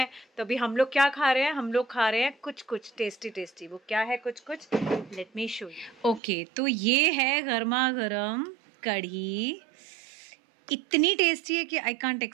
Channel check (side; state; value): left; drops out; at 6.2 s